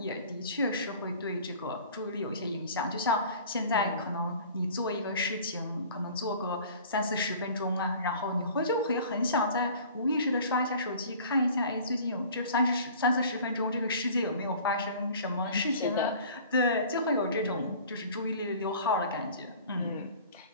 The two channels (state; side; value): inverted; both; correlation -0.45